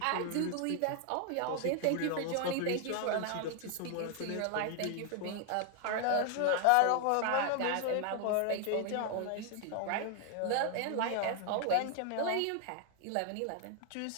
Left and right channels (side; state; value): both; different; correlation 0.00